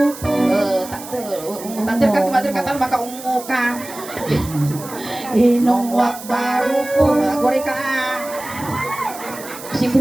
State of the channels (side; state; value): right; noise; hiss, 14 dB below the sound